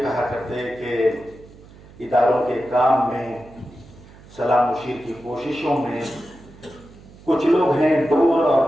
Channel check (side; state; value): right; noise; hum, 22 dB below the sound